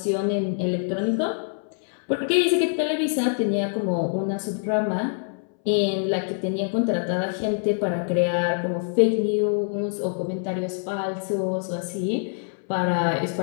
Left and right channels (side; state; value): right; silent; 62 dB below the other